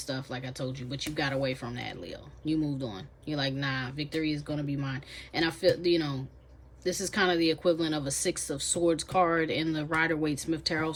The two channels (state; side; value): identical; both; correlation 1.00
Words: like I told you, but you got away from that, Leo. You moved on. You're like, nah, victory is going to be mine. And I feel, you know, this is kind of the equivalent of a Six of Swords card in the Rider-Waite-Smith Tarot.